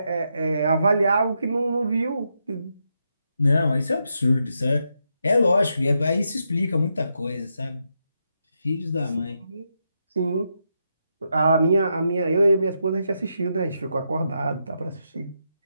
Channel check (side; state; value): both; inverted; correlation -0.82